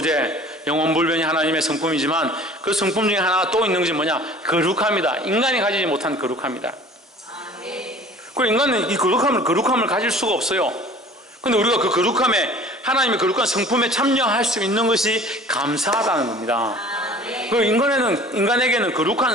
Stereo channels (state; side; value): normal; both; correlation 0.47